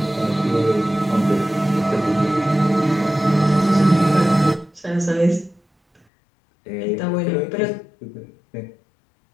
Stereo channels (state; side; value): drops out; right; at 6.0 s